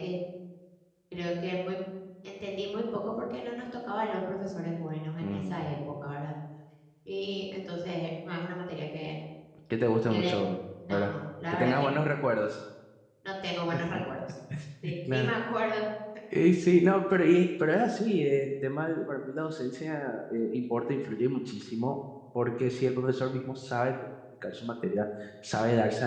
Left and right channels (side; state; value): both; identical; correlation 1.00